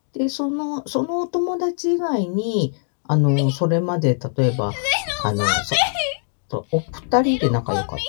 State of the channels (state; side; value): silent; right; digital silence